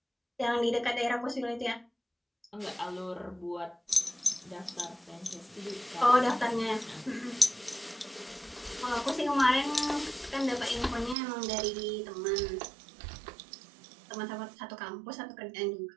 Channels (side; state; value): left; drops out; at 11.2 s